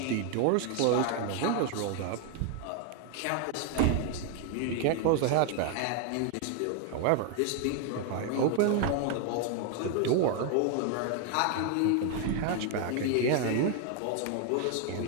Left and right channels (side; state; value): both; different; correlation 0.01